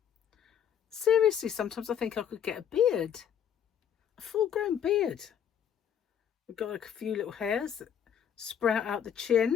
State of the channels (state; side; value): quieter; right; 8.8 dB